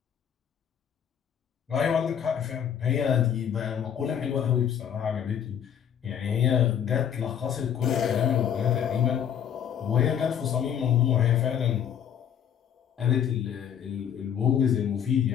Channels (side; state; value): right; quieter; 8.9 dB